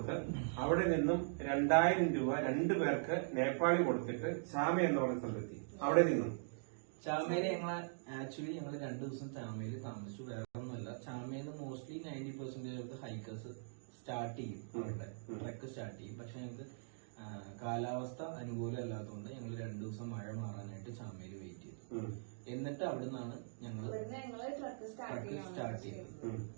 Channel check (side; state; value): left; silent; digital silence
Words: അവിടെ നിന്നും 2000 രൂപ 2 പേർക്ക് നേപ്പാളി കൊടുത്തിട്ട് ചാമ എന്ന് പറഞ്ഞ സ്ഥലത്തെത്തി. അവിടെ നിന്നും ചാമയില് ആക്ച്വലി ഞങ്ങൾ 2 ദിവസം ചാമയിൽ താമസിച്ചു. വേറെ ഒന്നുമല്ല, ചാമയില് മോസ്റ്റ്ലി 90% ഹൈക്കേഴ്സ് സ്റ്റാർട്ട് ചെയ്യും. അവരുടെ ട്രക്ക് സ്റ്റാർട്ട് ചെയ്യും. പക്ഷെ ഞങ്ങൾക്ക് കാലാവസ്ഥ അനുകൂലമല്ലാത്തതുകൊണ്ട് ഞങ്ങൾ 2 ദിവസം മഴ മാറാനായിട്ട് ചാമയിൽ വെയിറ്റ് ചെയ്തു. എന്നിട്ട് അവിടെ നിന്നാണ് ഞങ്ങൾ ട്രക്ക് സ്റ്റാർട്ട് ചെയ്തത്.